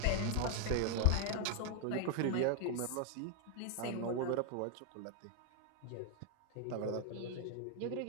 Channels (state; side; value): different; both; correlation 0.00